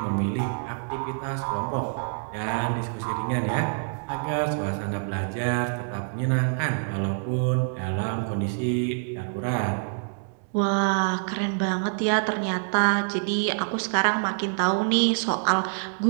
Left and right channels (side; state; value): left; silent; digital silence